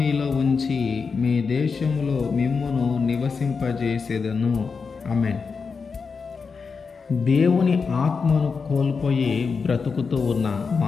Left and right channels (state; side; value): quieter; right; 5.2 dB